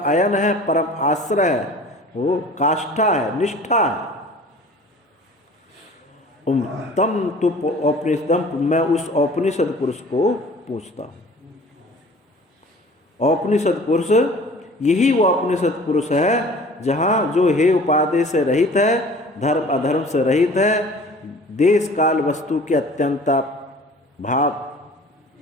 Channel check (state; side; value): normal; both; correlation 0.46